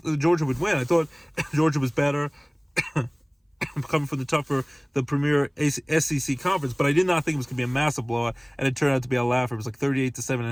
Georgia would win. I thought Georgia was better. Coming from the premier SEC conference, but I did not think it was going to be a massive blowout, and it turned out to be a laugher. It was like 38-7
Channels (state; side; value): identical; both; correlation 1.00